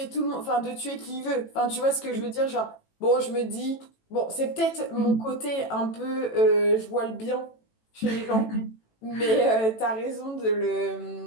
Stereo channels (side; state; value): right; late; 18 ms